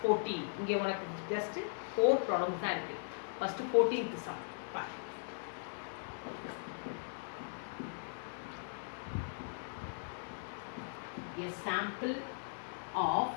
14. இங்கே உனக்கு ஜஸ்ட் 4 ப்ராப்ளம்ஸ் தான் இருக்குது. ஃபஸ்ட்டு 14th சம் பா. A sample of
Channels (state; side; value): silent; right; digital silence